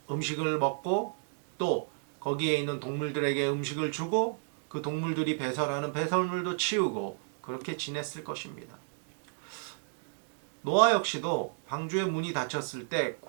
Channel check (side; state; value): left; silent; digital silence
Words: 음식을 먹고, 또 거기에 있는 동물들에게 음식을 주고, 그 동물들이 배설하는 배설물도 치우고, 그렇게 지냈을 것입니다. 노아 역시도 방주의 문이 닫혔을 때